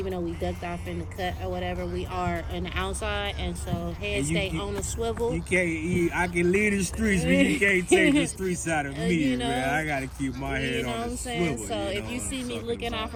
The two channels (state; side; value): identical; both; correlation 1.00